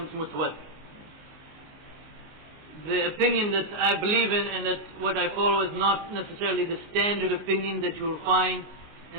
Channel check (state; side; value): late; left; 19 ms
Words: mutawatir. The opinion that I believe in and that what I follow is not necessarily the standard opinion that you will find